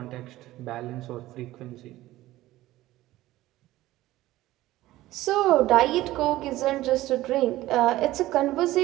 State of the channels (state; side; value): quieter; left; 16.3 dB